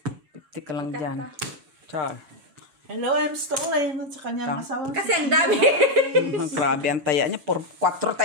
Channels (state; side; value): late; left; 7.1 ms